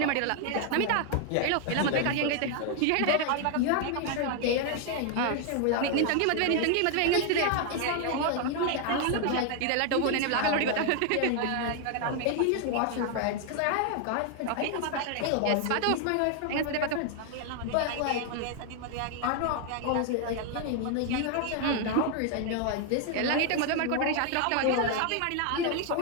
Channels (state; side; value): different; both; correlation 0.00